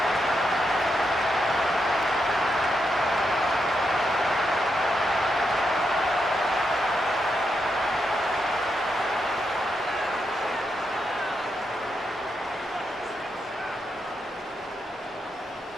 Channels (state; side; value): normal; both; correlation 0.83